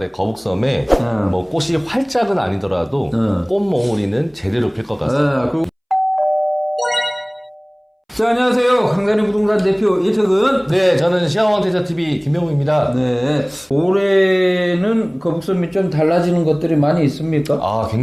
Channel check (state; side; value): identical; both; correlation 1.00